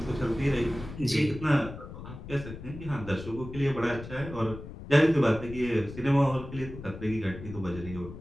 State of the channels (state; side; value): noise; left; rumble, 12 dB below the sound